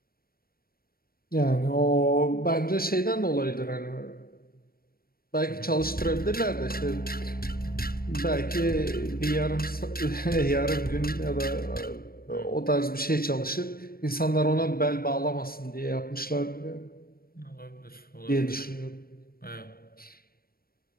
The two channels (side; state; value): right; late; 0.43 ms